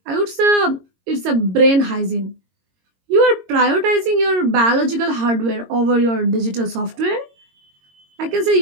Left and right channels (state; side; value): late; left; 22 ms